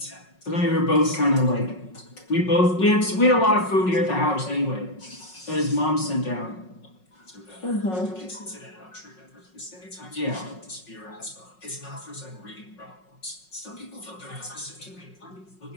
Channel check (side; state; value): right; late; 5.5 ms